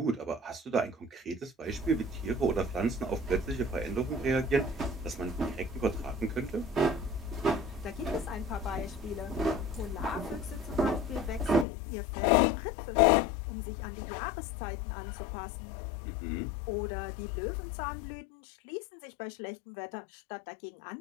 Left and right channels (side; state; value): right; drops out; at 11.7 s